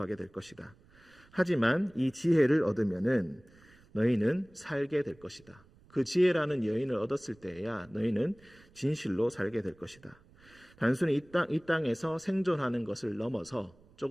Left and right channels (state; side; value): noise; right; rumble, 27 dB below the sound